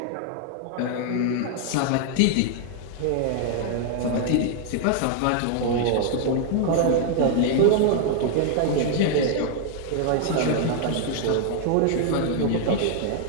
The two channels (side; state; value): both; different; correlation 0.00